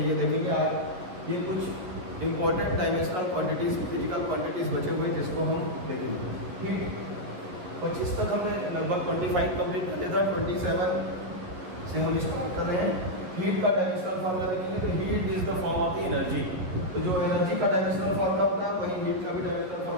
ये देखेंगे। आज ये कुछ important dimensional quantities, physical quantities बचे हुए जिसको हम देखेंगे। हीट 25 तक हमने लगभग 25 कंप्लीट कर लिया था। 27 से हम स्टार्ट कर रहे हैं। हीट का डायमेंशनल फार्मूला देखेंगे तो heat is the form of the energy. तो जो एनर्जी का डायमेंशनल फार्मूला होता है वही हीट का भी डायमेंशनल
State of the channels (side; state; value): left; late; 11 ms